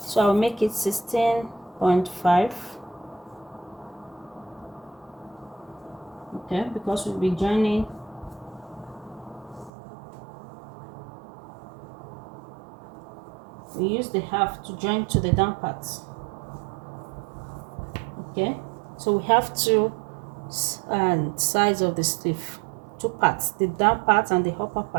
So I'll make it 16.5. Okay, because we'll be joining we use the half to join to the down parts. Okay, so we have two sides of the sleeve, 2 parts, the down part and the upper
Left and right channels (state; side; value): drops out; left; at 9.7 s